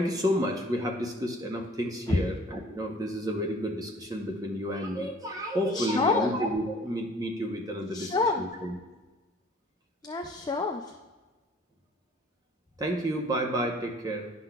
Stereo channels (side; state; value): both; normal; correlation 0.53